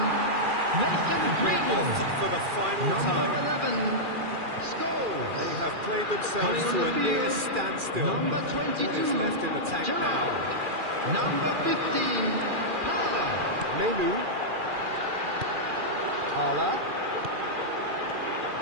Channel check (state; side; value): late; left; 2.4 ms